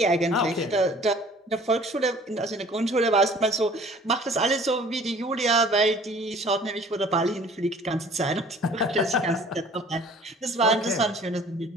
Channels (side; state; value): both; normal; correlation 0.51